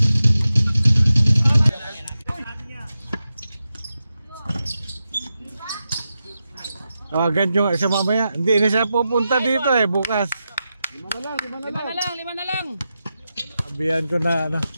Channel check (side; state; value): both; inverted; correlation -0.90